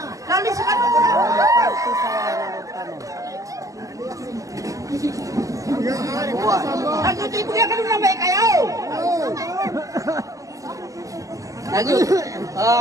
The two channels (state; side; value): late; left; 0.16 ms